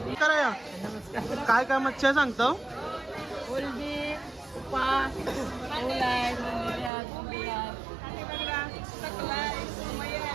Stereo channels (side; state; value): left; drops out; at 6.9 s